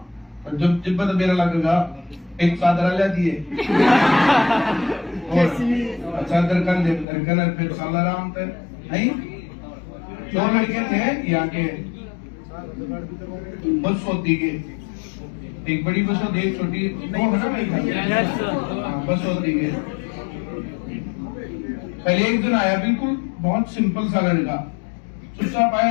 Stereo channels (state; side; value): drops out; right; at 7.1 s